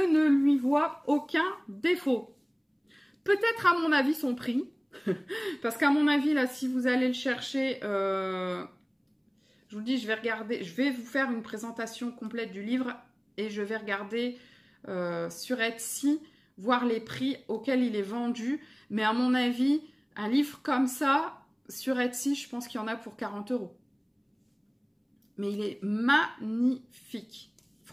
lui vois aucun défaut. Peut-être à mon avis son prix. Parce qu'à mon avis, là, si vous allez le chercher, je vous le dis, je vais regarder, je vais vous faire une présentation complète du livre et je vais regarder sur Etsy, voir les prix auxquels il est vendu. Mais à mon avis, un livre comme ça, sur Etsy, je pense qu'il y en a pour 40 €. Mais il est magnifique.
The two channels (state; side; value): identical; both; correlation 1.00